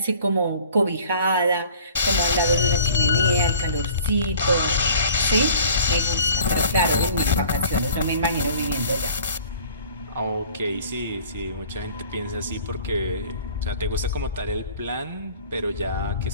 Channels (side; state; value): both; inverted; correlation -0.48